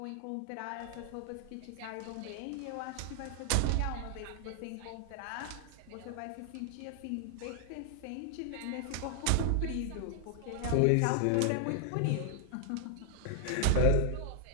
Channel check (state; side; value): different; both; correlation 0.00